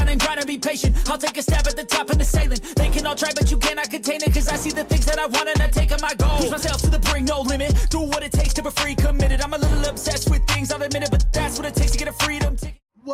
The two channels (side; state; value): both; identical; correlation 1.00